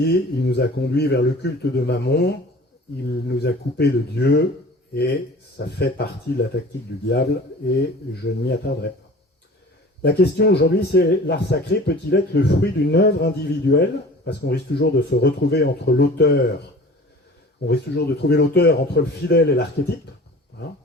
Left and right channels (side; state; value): both; normal; correlation 0.43